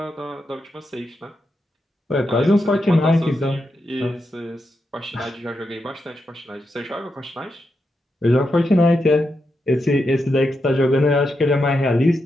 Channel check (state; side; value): normal; both; correlation 0.85